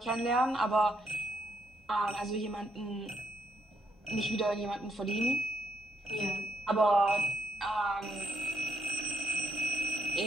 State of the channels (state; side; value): normal; both; correlation 0.74